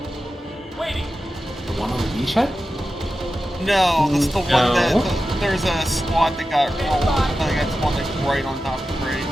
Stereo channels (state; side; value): normal; both; correlation 0.92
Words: The one on the beachhead? No, that's the one that there's a squad that got rolled. I think that's one that's right on top of the grade.